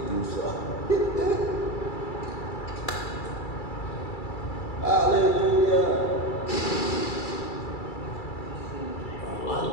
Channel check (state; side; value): late; right; 2.3 ms